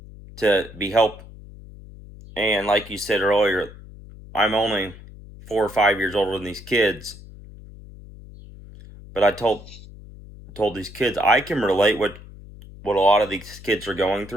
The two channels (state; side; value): noise; left; hum, 18 dB below the sound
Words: to be helped. And like you said earlier, I'm only 4 or 5 years older than these kids. But I told these kids I can relate what a lot of these kids are going